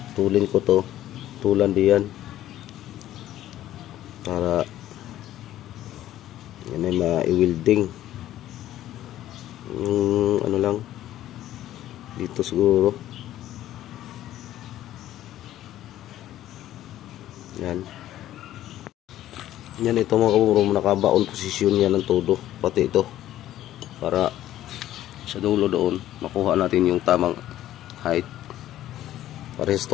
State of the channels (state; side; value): quieter; right; 13.2 dB